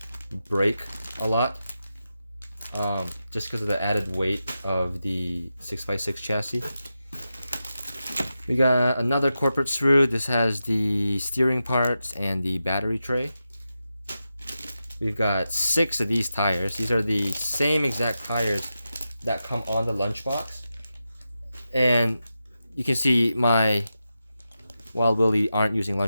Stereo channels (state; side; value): inverted; both; correlation -0.90